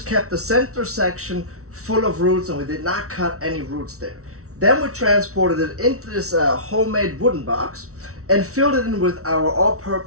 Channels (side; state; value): left; late; 0.64 ms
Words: kept the center section full of roots, and we did not cut any roots there. Then we transported it into this homemade wooden box and filled it in with our